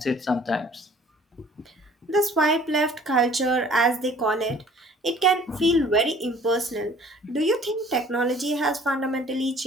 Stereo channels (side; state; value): both; normal; correlation 0.53